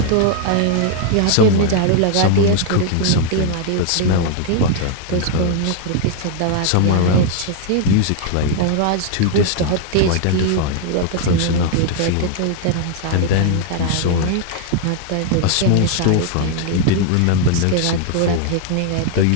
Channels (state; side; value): different; both; correlation 0.00